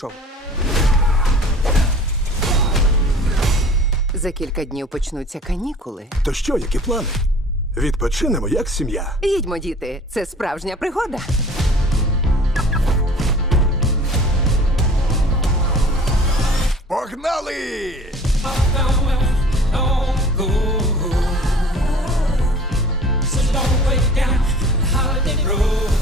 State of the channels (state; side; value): normal; both; correlation 0.47